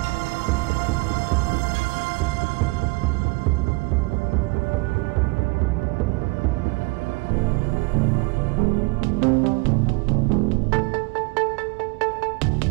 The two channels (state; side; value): quieter; left; 28.1 dB